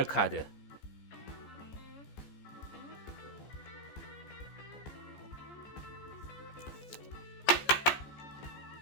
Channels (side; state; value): right; late; 14 ms